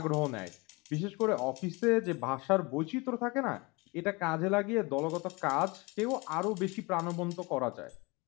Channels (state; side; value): quieter; right; 26.3 dB